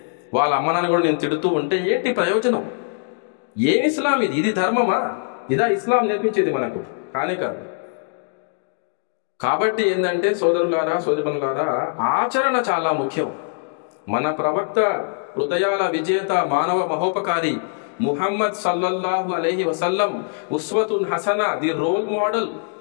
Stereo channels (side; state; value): right; silent; digital silence